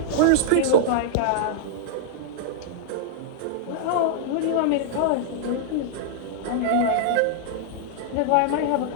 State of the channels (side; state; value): both; different; correlation -0.01